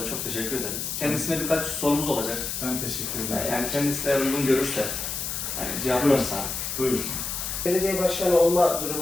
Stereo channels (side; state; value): left; noise; hiss, 4 dB below the sound